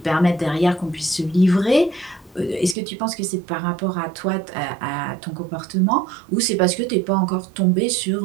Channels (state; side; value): drops out; left; at 2.8 s